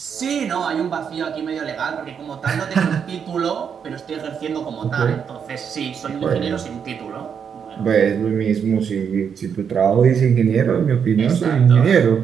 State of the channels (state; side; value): quieter; left; 7.2 dB